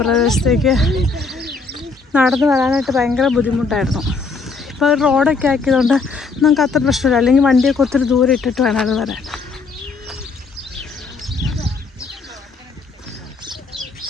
പ്രദേശത്തേക്ക് നടന്നു വരാനായിട്ട് ഭയങ്കര ബുദ്ധിമുട്ടായിരുന്നു. ഇപ്പോൾ റോഡൊക്കെ ആക്കിയതുകൊണ്ട് നമുക്ക് അത്ര പ്രശ്നമില്ല. അല്ലെങ്കിൽ വണ്ടിയൊക്കെ ഒത്തിരി ദൂരം ഇട്ടിട്ട് വേണം അത് വരാൻ.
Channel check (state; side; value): quieter; right; 4.4 dB